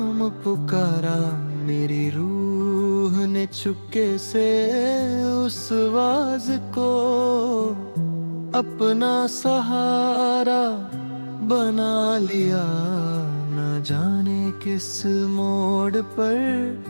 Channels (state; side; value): inverted; both; correlation -1.00